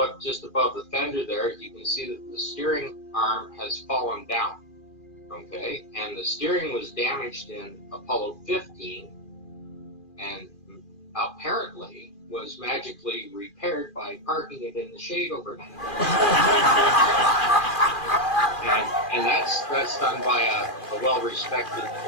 just above the fender there, you can see that the steering arm has fallen down, okay? And the steering was damaged in Apollo 15 and apparently was magically repaired by parking it in the shade overnight. and that's done by a well-respected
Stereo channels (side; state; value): right; late; 2.4 ms